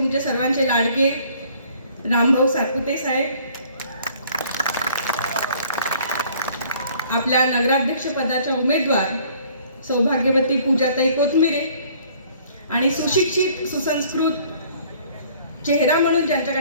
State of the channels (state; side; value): inverted; both; correlation -0.57